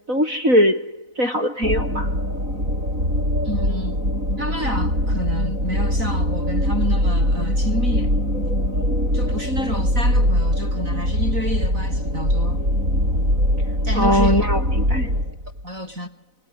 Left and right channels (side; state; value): left; late; 4.0 ms